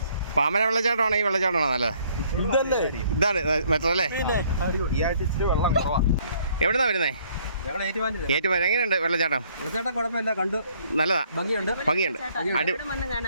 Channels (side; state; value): both; inverted; correlation -0.63